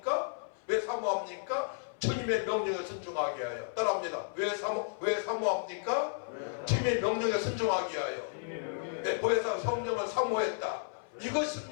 왜 사모합니까? 주님의 명령에 순종하게 하여. 따라합니다. 왜 사모합니까? 주님의 명령에 순종하게 하여. 네, 보혜사 성령을 사모했다.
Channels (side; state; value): right; silent; 56 dB below the other